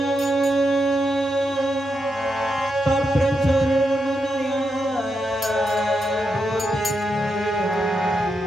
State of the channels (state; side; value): normal; both; correlation 0.84